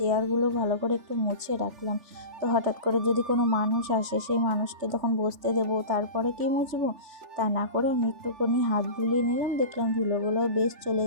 ভালো করে একটু মুছে রাখলাম। তো হঠাৎ করে যদি কোনো মানুষ আসে, সেই মানুষকে তখন বসতে দেবো, তারপরে কি মুছবো, তা না করে আমি একটুখানি হাত বুলিয়ে নিলাম, দেখলাম ধুলোগুলোও বেশ চলে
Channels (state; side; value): late; left; 3.4 ms